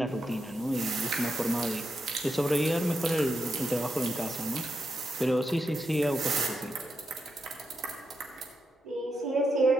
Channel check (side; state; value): both; normal; correlation 0.84